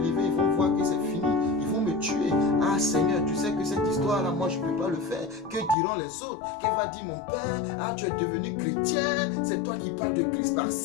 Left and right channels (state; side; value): drops out; right; at 5.8 s